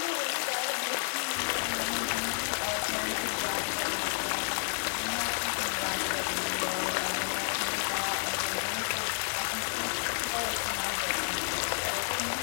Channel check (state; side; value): silent; right; 57 dB below the other